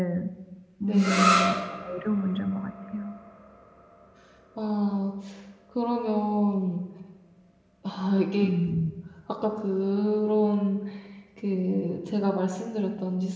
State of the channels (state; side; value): identical; both; correlation 1.00